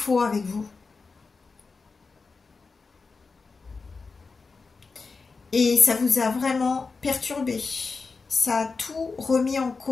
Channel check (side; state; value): right; quieter; 4.4 dB